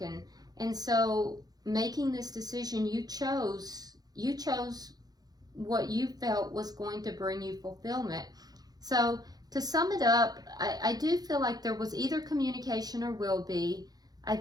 And so making this decision, you chose what you felt was going to bring you fulfillment. So to sum it up, I do feel like there was either communication or will be. I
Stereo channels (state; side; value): late; left; 0.19 ms